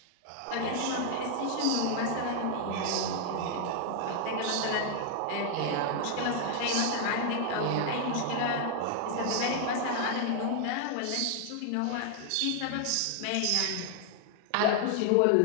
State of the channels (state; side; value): different; both; correlation 0.00